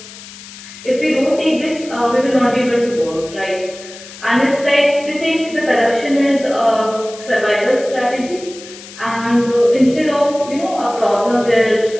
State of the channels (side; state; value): left; noise; hiss, 16 dB below the sound